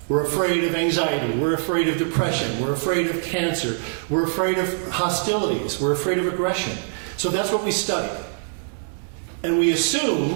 We're afraid of anxiety. We're afraid of depression. We're afraid of cancer. We're afraid of hostilities. We're afraid of aggression. So that's what we study. And we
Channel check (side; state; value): left; silent; 63 dB below the other